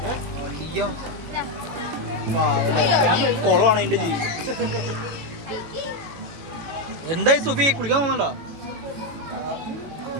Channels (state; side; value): late; left; 18 ms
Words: അയ്യോ, കുളമാണ് എന്റെ ജീവിതം. എന്തായി സുഫി, കുളിക്കാൻ പോകുന്നുണ്ടോ?